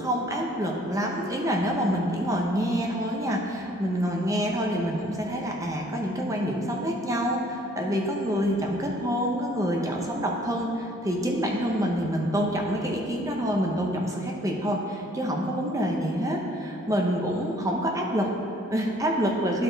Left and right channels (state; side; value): normal; both; correlation 0.59